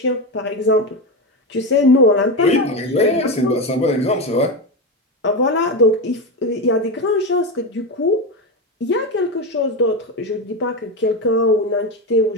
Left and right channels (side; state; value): both; normal; correlation 0.15